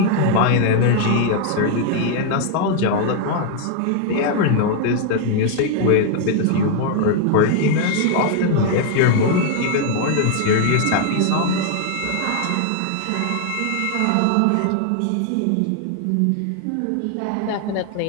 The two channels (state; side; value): different; both; correlation 0.00